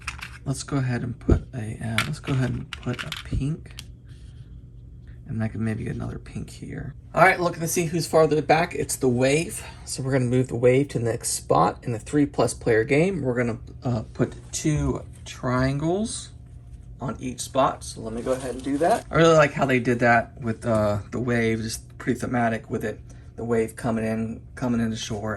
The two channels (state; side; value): identical; both; correlation 1.00